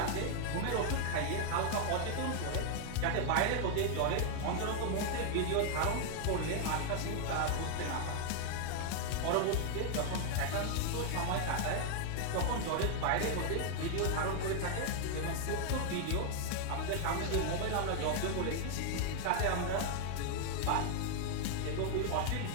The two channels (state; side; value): different; both; correlation 0.00